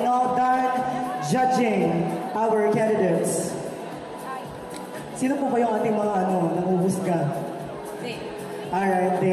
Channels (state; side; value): identical; both; correlation 1.00